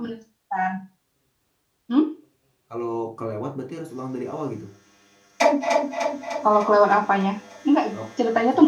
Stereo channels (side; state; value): both; identical; correlation 1.00